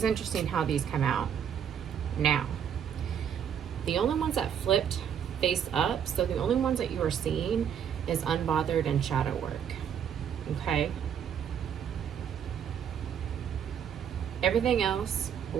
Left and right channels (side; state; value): left; quieter; 8.5 dB